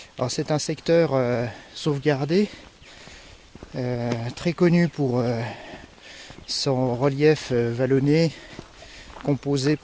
Alors c'est un secteur sauvegardé, très connu pour son relief vallonné, composé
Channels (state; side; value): identical; both; correlation 1.00